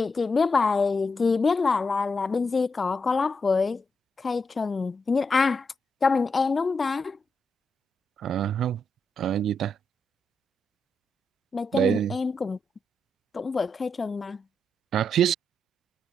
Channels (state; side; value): normal; both; correlation 0.83